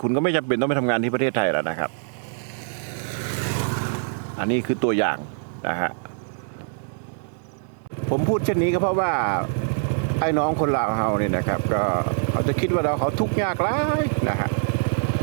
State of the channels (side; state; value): left; silent; digital silence